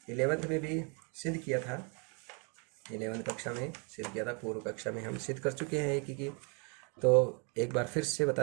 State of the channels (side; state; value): left; quieter; 35.4 dB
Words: 11th में भी सिद्ध किया था, 11th कक्षा में सिद्ध किया था, पूर्व कक्षा में हम सिद्ध कर चुके हैं एकीकी। तो एक बार फिर से